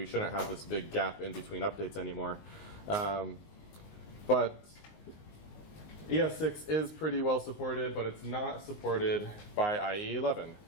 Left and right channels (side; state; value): right; late; 19 ms